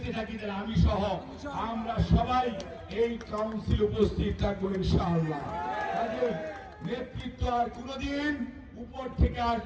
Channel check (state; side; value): identical; both; correlation 1.00